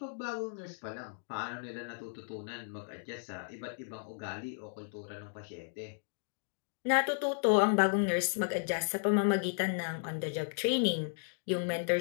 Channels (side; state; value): right; silent; digital silence